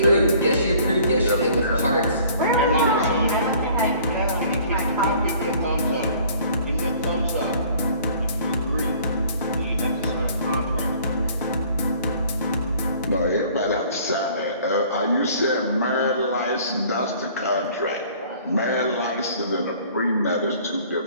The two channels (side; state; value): both; inverted; correlation -0.53